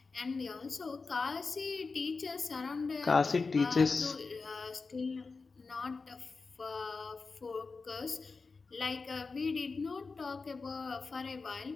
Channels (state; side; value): quieter; right; 4.3 dB